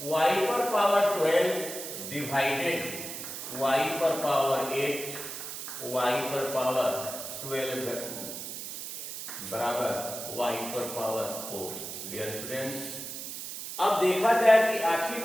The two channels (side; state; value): right; noise; hiss, 8 dB below the sound